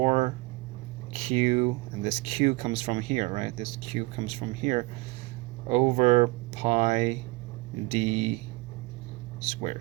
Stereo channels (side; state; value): left; quieter; 23.9 dB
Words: and this q comes from here, right? This q comes from here, over pi d